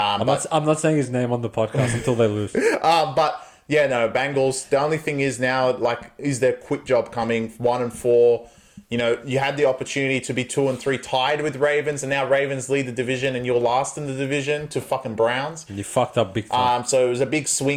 not saying his name on the podcast until they lose. But yeah, no, Bengals. The only thing is now, like, is their quick job coming? 1-4. You know, you had the opportunity to be 2-3 tied with Ravens, and now Ravens lead the division, and you're last in the division to fucking Browns. You fucked up big time. So it was a big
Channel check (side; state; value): both; identical; correlation 1.00